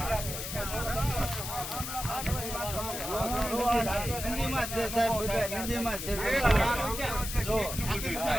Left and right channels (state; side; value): noise; left; hiss, 6 dB below the sound